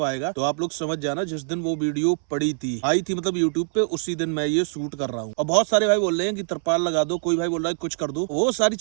आएगा, तो आप लोग समझ जाना जिस दिन वो वीडियो पड़ी थी आई थी मतलब यूट्यूब पे, उसी दिन मैं ये शूट कर रहा हूँ। और बहुत सारे भाई बोल रहे हैं कि तरपाल लगा दो, कोई भाई बोल रहा है कुछ कर दो। वो सारी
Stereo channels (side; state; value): left; silent; 63 dB below the other